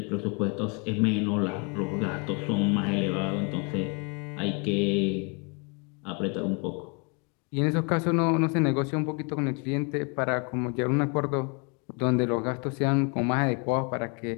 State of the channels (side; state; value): right; quieter; 33.4 dB